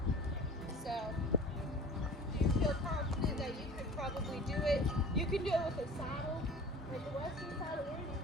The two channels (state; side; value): normal; both; correlation 0.42